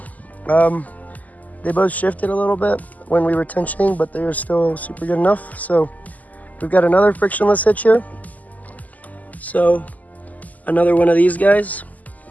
They both shifted a little bit when we were tensioning, but they were still super good enough. So we've got another frictionless hitch here. So another one of these guys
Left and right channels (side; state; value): right; late; 0.078 ms